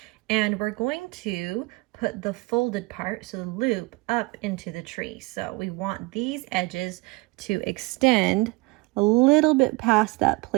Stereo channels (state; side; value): quieter; left; 24.4 dB